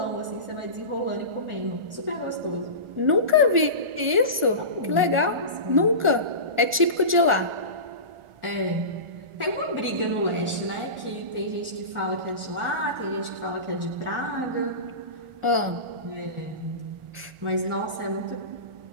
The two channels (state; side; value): late; left; 1.4 ms